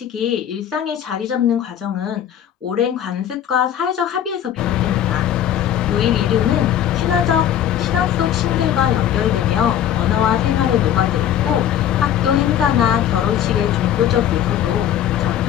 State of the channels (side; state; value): right; quieter; 10.3 dB